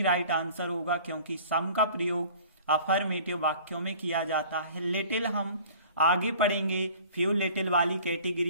राइट आंसर होगा, क्योंकि सम का प्रयोग अफर्मेटिव वाक्यों में किया जाता है। लिटिल हम आगे पढ़ेंगे, फ्यू लिटिल वाली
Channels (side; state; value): both; inverted; correlation -0.47